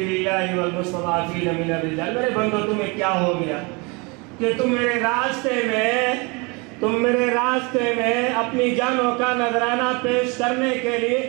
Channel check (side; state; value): left; quieter; 29.1 dB